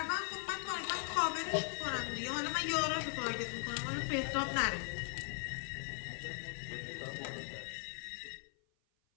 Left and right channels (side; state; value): right; silent; 52 dB below the other